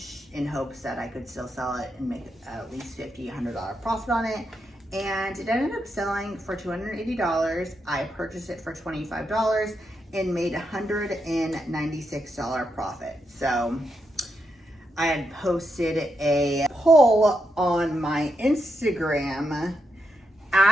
in hopes that I could still sell it and make at least $50, $100 profit on it. And it ended up selling for $280. I purchased it for $25 and made $196 profit. So I had posted a poll on my Instagram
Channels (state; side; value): normal; both; correlation 0.83